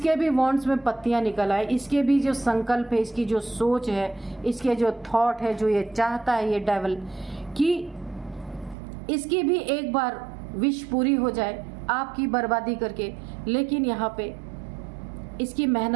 भी वॉन्ड्स में पत्तियां निकल आए, इसके भी जो संकल्प है, इसकी जो सोच है, इसके जो थॉट है, जो ये चाहता है ये डेविल कि इसकी भी एक बार विश पूरी हो जाए आपकी बर्बादी करके। लेकिन यहाँ पे इसकी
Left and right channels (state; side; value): drops out; left; at 8.8 s